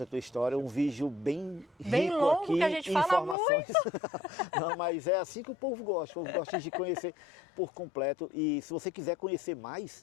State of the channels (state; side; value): drops out; right; at 3.4 s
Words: tua história, um vídeo bem rico longo, aqui que a gente em fala informações. Muito. Não, mas é assim que o povo gosta de conhecer por completo. E se você quiser conhecer